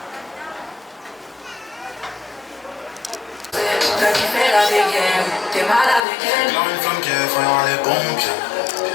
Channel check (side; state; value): right; drops out; at 6.1 s